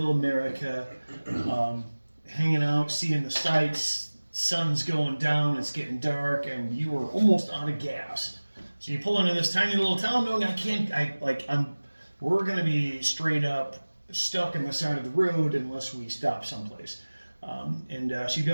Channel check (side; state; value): both; inverted; correlation -1.00